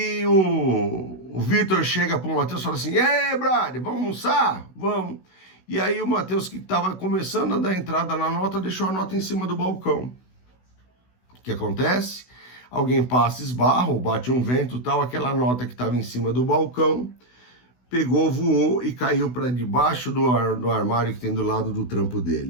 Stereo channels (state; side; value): late; right; 16 ms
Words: o Vitor chega para o Matheus e fala assim: "Ei, brother, vamos almoçar? Vamos." E aí o Matheus, que estava começando a dar entrada na nota, deixou a nota em cima do balcão. O que acontece? Alguém passa, esbarra, ou bate um vento, tal, aquela nota que estava em cima do balcão, pegou, voou e caiu para debaixo do armário que tem do lado do trampo